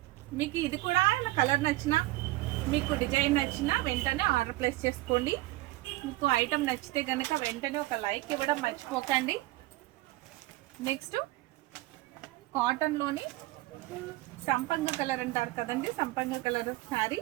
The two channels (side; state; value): left; quieter; 18.8 dB